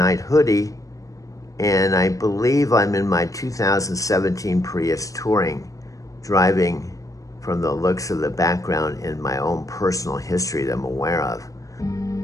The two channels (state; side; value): late; right; 0.16 ms